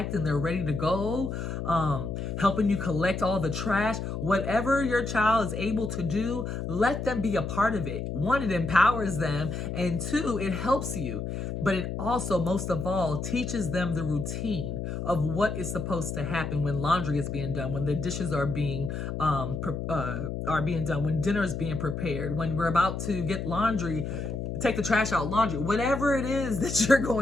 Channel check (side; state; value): left; noise; hum, 4 dB below the sound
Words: and they're ready to go. Helping you collect all the trash. Whatever your child is able to do, let them be a part of it. 1, it empowers them, and 2, it helps you. But it also, most of all, teaches them the routine of what is supposed to happen when laundry is being done, when the dishes are being done, when dinner is being prepared, when we're about to get laundry, take the trash out, laundry, whatever it is that you're